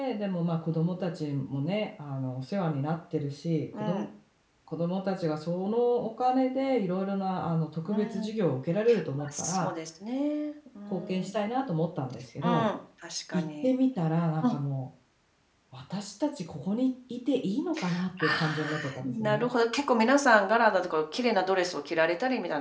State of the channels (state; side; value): identical; both; correlation 1.00